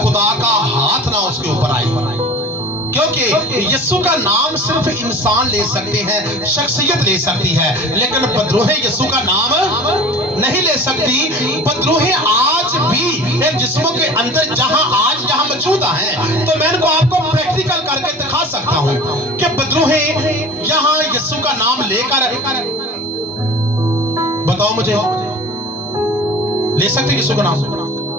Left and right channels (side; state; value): both; normal; correlation 0.41